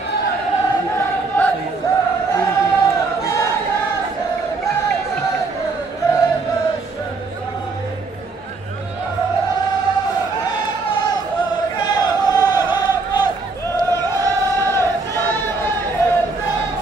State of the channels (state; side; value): quieter; left; 3.8 dB